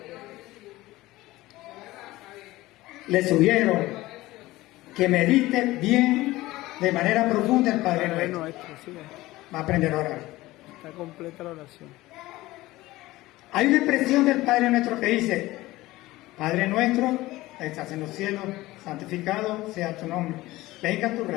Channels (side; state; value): right; quieter; 18.1 dB